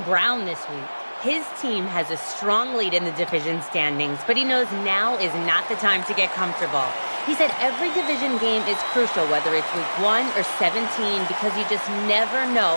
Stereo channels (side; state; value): both; inverted; correlation -1.00